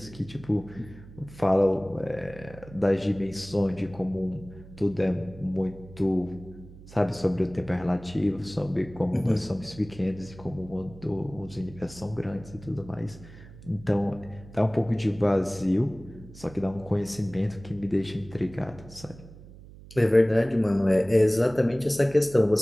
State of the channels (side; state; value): right; noise; hum, 18 dB below the sound